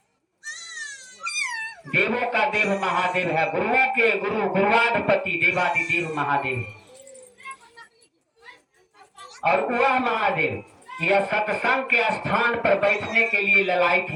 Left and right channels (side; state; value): both; identical; correlation 1.00